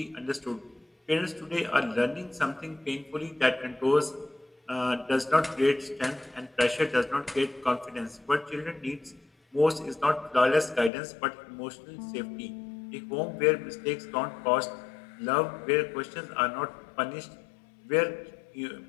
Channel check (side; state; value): right; drops out; at 10.9 s